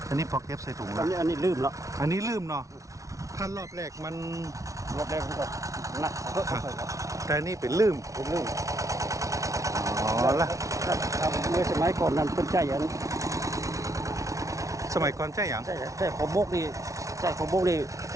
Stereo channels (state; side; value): late; left; 0.16 ms